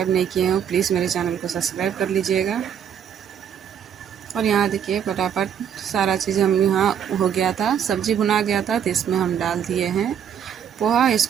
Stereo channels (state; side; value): quieter; left; 8.5 dB